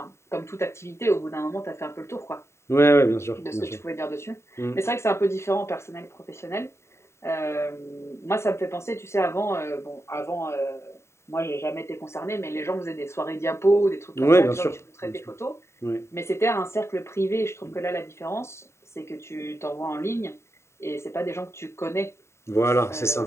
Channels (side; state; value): right; late; 0.13 ms